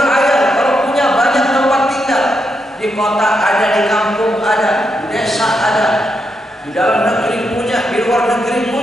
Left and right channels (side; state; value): both; normal; correlation 0.82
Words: kalau punya banyak tempat tinggal. Di kota ada, di kampung ada, di desa ada, di dalam negeri punya, di luar negeri